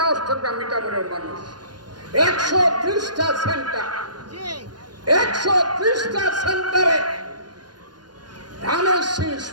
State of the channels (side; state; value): left; late; 0.70 ms